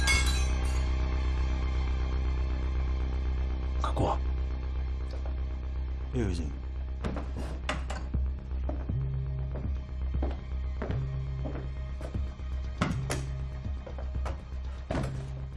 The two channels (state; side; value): identical; both; correlation 1.00